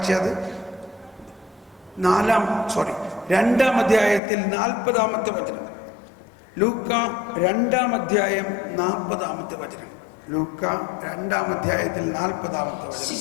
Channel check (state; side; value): drops out; right; at 4.2 s